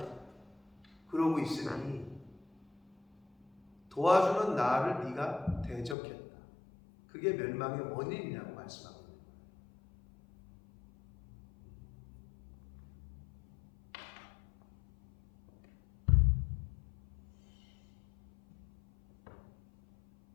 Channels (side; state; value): right; drops out; at 6.0 s